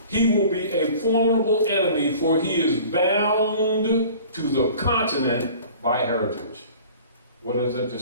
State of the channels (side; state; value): both; inverted; correlation -0.46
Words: he will be a formidable enemy, for he is bound to the continent by heritage. What does that